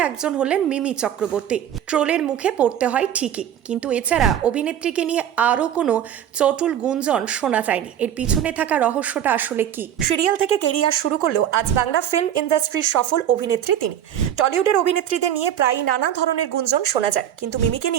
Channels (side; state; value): left; quieter; 10.2 dB